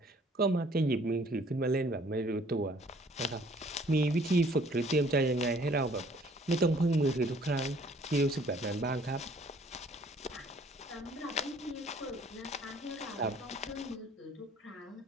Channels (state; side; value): normal; both; correlation 0.58